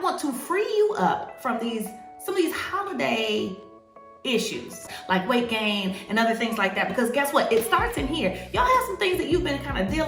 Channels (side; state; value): both; identical; correlation 1.00